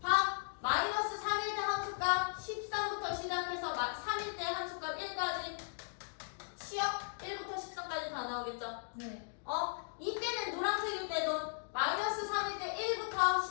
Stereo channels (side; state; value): right; silent; digital silence